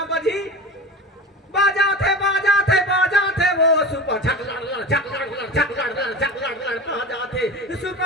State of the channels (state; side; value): normal; both; correlation 0.31